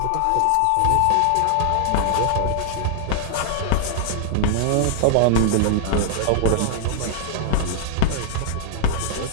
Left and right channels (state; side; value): different; both; correlation 0.00